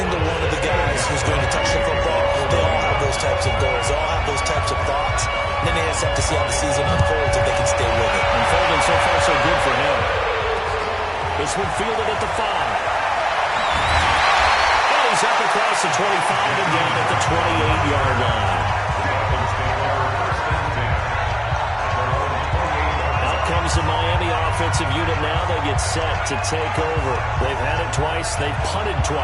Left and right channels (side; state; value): both; identical; correlation 1.00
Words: one of the guys who's going to touch the football, they all have those types of goals. They all have those types of thoughts. And then they just have to see how the season unfolds if they can stay with it. Unfolding so far so good for him. This one fielded at the 5. And he's up across the 25 and down at the 28-yard line. Comes the Miami offensive unit now. They get set to take over. They've had it twice. They've punted